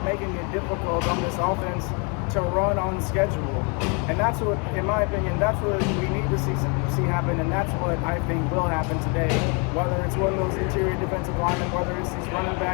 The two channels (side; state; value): right; quieter; 34.3 dB